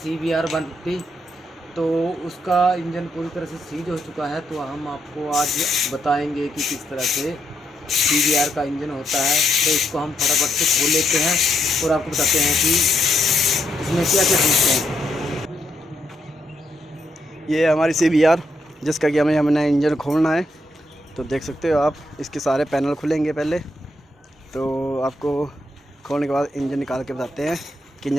150। तो उसका इंजन पूरी तरह से सीज हो चुका है। तो हम आपको आज बताएंगे कि किस तरह से CBR का इंजन होता है। तो इसको हम फटाफट से खोल लेते हैं और आपको बताते हैं कि इसमें क्या क्या चीज़ हैं। ये हमारी CBR जिसका कि हमने इंजन खोलना है। तो देख सकते हो आप, इसके सारे पैनल खुलेंगे पहले। तो आपको खोलने के बाद इंजन निकाल के बताते हैं कि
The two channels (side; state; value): both; normal; correlation 0.78